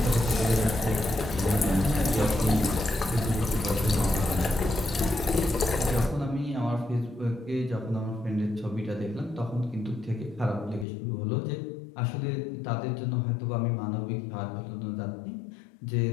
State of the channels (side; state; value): right; drops out; at 10.9 s